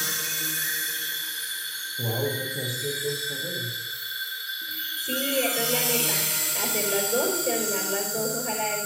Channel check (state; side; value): identical; both; correlation 1.00